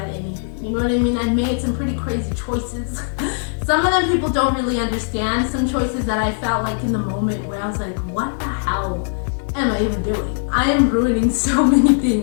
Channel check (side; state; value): right; silent; digital silence